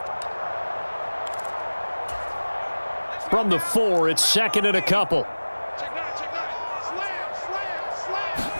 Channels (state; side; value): inverted; both; correlation -1.00